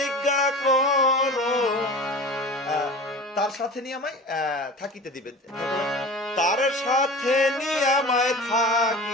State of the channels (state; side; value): normal; both; correlation 0.36